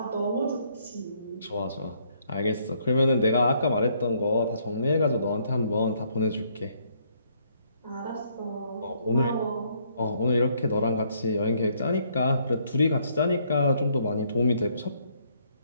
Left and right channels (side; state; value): both; inverted; correlation -0.69